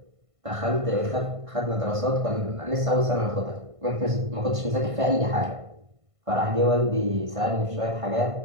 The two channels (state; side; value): late; left; 1.5 ms